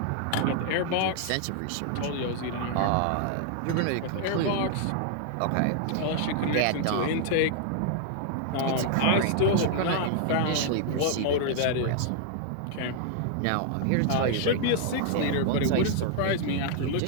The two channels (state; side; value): different; both; correlation -0.01